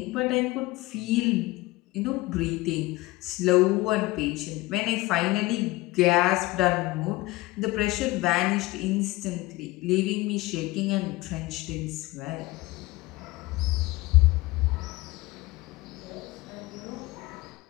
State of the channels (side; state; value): right; quieter; 20.2 dB